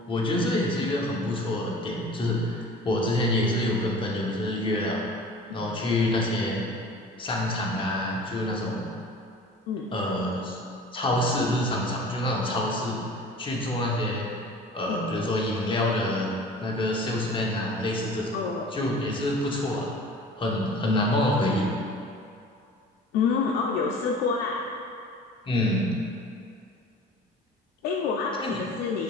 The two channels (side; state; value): both; normal; correlation 0.42